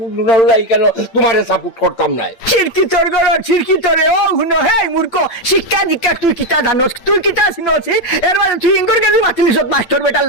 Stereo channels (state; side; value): late; right; 8.9 ms